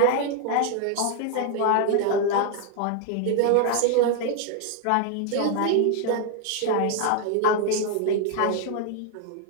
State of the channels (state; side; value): different; both; correlation 0.00